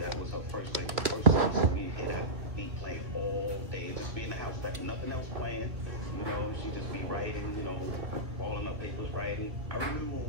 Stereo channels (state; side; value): late; left; 2.5 ms